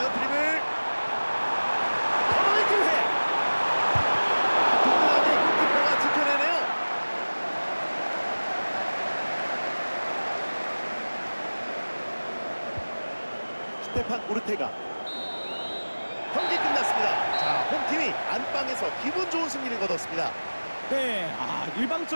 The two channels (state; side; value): inverted; both; correlation -1.00